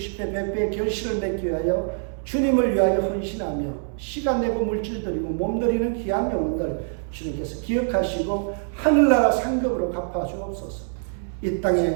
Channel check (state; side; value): silent; left; digital silence